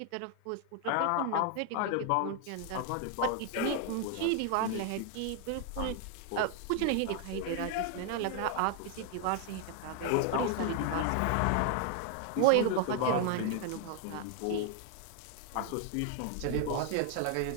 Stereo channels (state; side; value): different; both; correlation 0.00